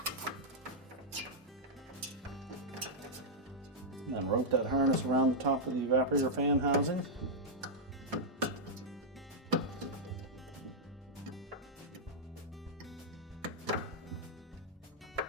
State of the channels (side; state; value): both; normal; correlation -0.06